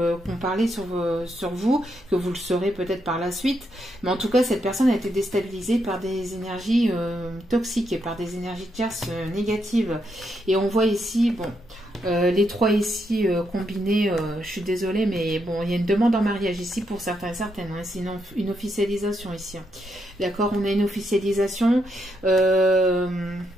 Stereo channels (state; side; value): normal; both; correlation 0.79